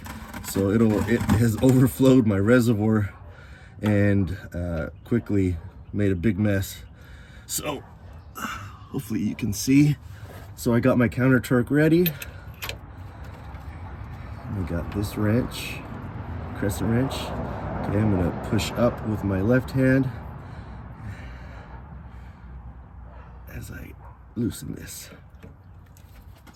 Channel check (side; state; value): both; identical; correlation 1.00